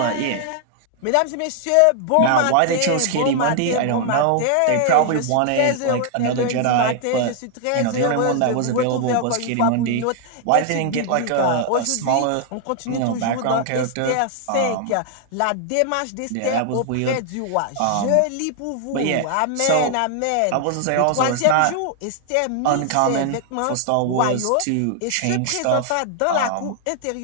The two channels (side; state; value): both; different; correlation 0.00